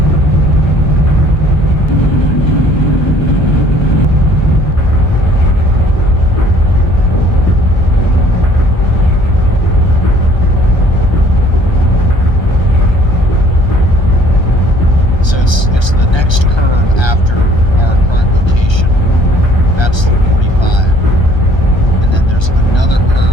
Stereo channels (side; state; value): right; late; 1.3 ms